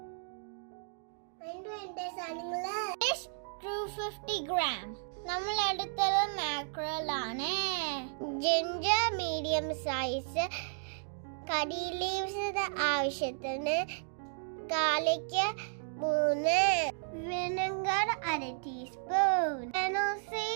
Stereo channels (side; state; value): left; silent; digital silence